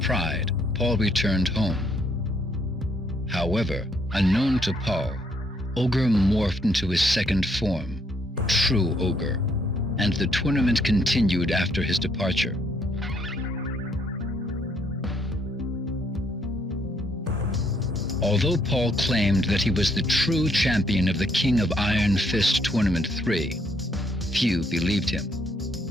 Paul returned home. However, unknown to Paul, Ogre morphed into his second form, True Ogre, and the tournament continued after his departure. Although Paul claimed that he was the true champion of the King of Iron Fist Tournament 3, few believed him.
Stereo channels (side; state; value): both; normal; correlation 0.71